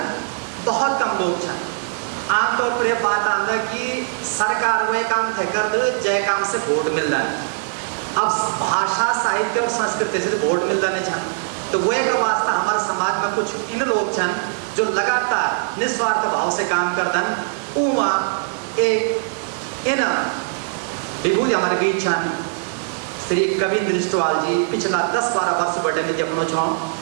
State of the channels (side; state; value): left; silent; digital silence